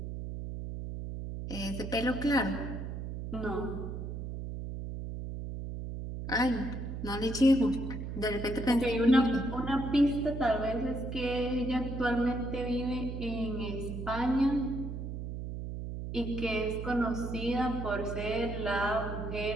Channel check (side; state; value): right; noise; hum, 6 dB below the sound